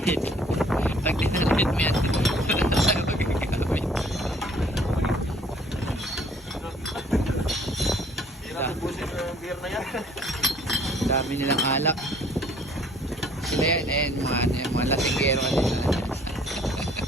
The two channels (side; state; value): both; normal; correlation 0.58